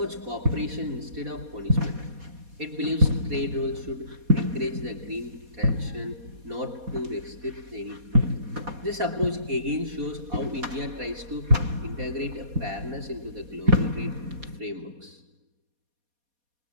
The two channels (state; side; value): late; left; 4.2 ms